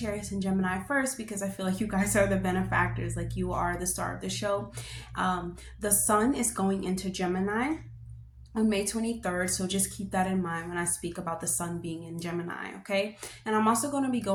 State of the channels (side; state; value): both; identical; correlation 1.00